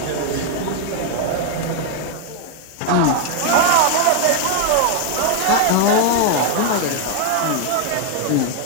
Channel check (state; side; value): different; both; correlation 0.00